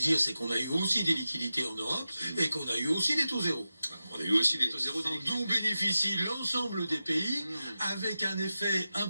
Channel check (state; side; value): inverted; both; correlation -0.93